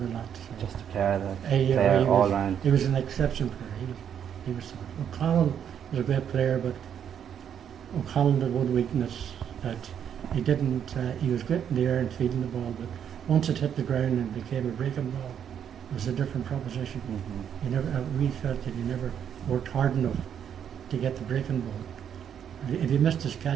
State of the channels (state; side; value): quieter; left; 8.7 dB